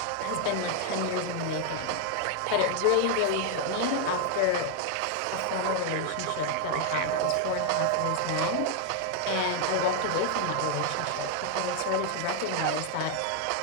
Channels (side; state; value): both; different; correlation 0.00